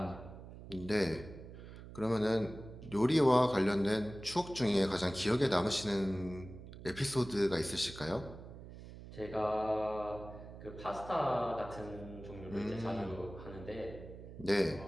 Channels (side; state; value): right; noise; hum, 14 dB below the sound